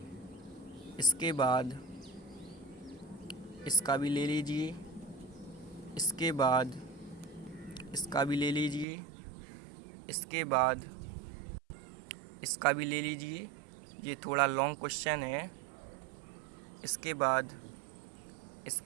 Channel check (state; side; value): drops out; left; at 8.8 s